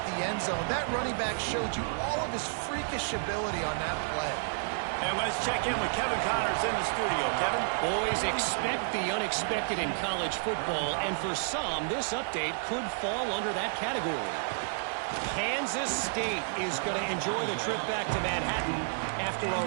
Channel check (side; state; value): left; silent; digital silence